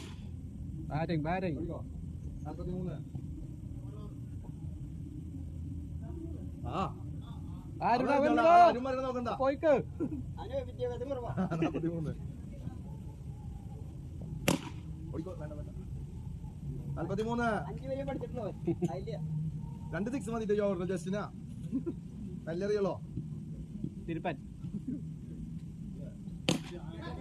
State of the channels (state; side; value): identical; both; correlation 1.00